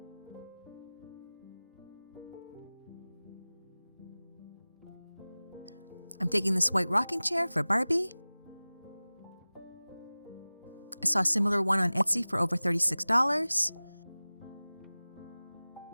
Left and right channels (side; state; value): both; inverted; correlation -0.99